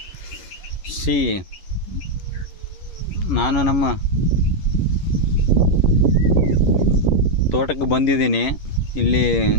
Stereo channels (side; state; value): right; late; 11 ms